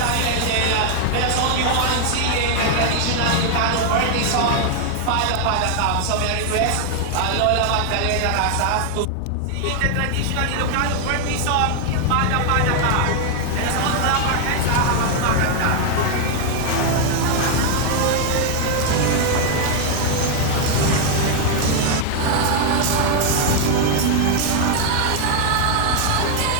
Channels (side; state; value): both; different; correlation 0.00